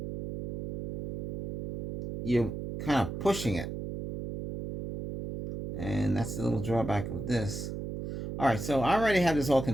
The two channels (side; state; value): right; noise; hum, 5 dB below the sound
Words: kind of pushing it, and that's the little drawback of this. All right, so I already have this all